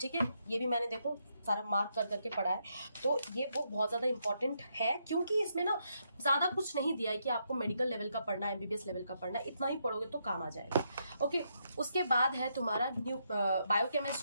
है। ये भी मैंने देखो सारा मार्क कर करके पढ़ा है। तो ये बुक बहुत ज्यादा इंपॉर्टेंट है क्योंकि इसमें ना ज्यादा कुछ नहीं दिया है कि आपको मेडिकल लेवल का पढ़ना है, एमबीबीएस लेवल का पढ़ना है, इतना ही पढ़ोगे तो काम आ जाएगा। ओके, उसके बाद है तुम्हारा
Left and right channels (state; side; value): inverted; both; correlation -0.78